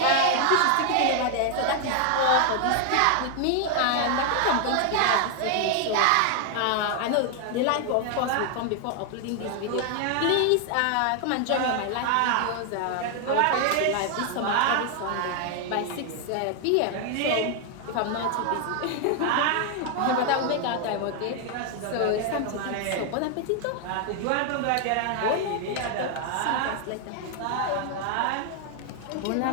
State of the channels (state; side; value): different; both; correlation 0.00